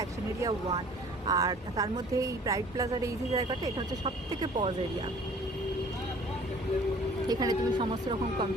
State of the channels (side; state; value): both; normal; correlation 0.51